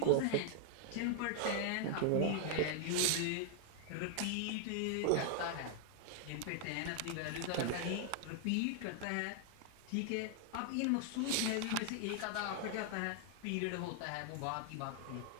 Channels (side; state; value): both; different; correlation 0.00